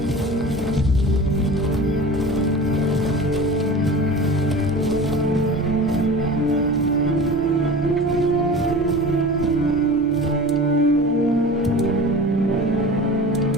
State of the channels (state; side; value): normal; both; correlation 0.36